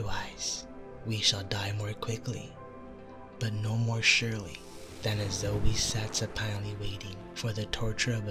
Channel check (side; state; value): both; identical; correlation 1.00